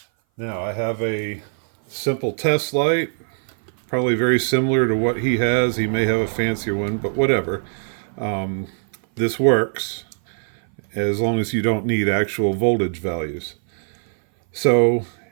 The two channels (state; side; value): silent; left; 60 dB below the other